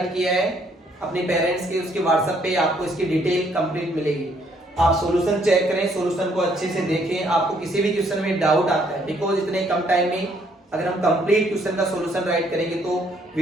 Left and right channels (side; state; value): both; normal; correlation 0.67